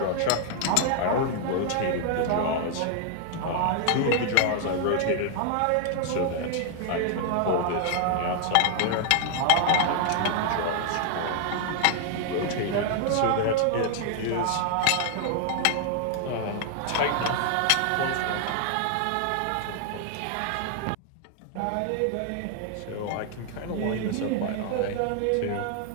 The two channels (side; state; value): both; different; correlation 0.00